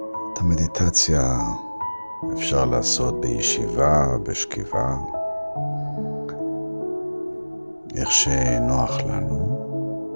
את המדיטציה אפשר לעשות בישיבה, בשכיבה, איך שנוח לנו.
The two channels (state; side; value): inverted; both; correlation -1.00